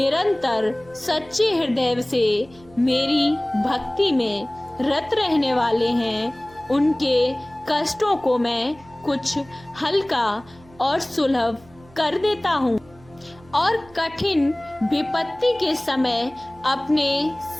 सच्चे हृदय से मेरी भक्ति में रत रहने वाले हैं, उनके कष्टों को मैं कुछ हल्का और सुलभ कर देता हूँ और कठिन विपत्ति के समय अपने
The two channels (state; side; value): noise; right; hum, 25 dB below the sound